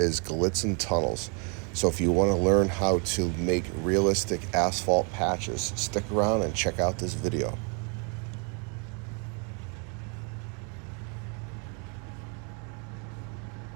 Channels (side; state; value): left; quieter; 36.2 dB